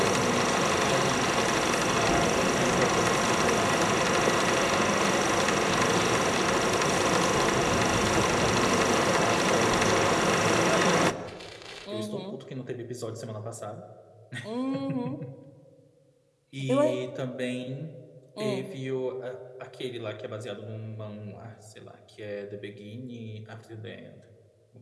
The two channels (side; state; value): both; identical; correlation 1.00